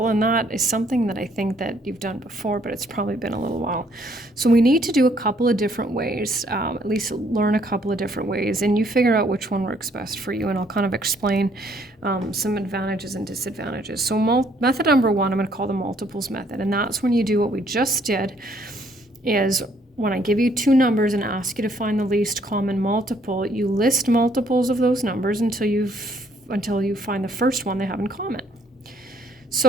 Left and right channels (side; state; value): both; normal; correlation 0.66